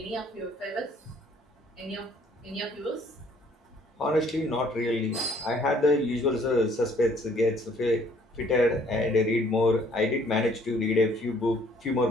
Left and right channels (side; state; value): both; normal; correlation 0.61